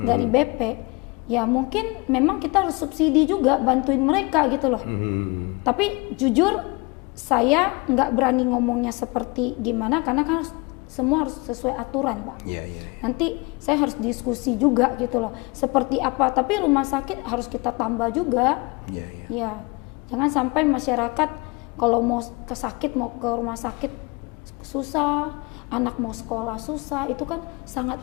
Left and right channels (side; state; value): right; quieter; 27.1 dB